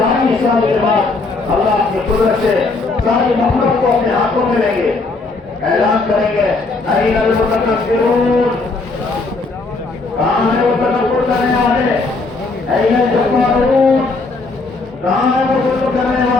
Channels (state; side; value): quieter; right; 3.7 dB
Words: سال کے بعد اللہ کی قدرت سے ساری مخلوق کو اپنے ہاتھوں میں لیں گے, اعلان کریں گے این المتکبرون, کہاں ہے وہ تکبر کرنے والے, این الجبارون, کہاں ہے وہ ظلم کرنے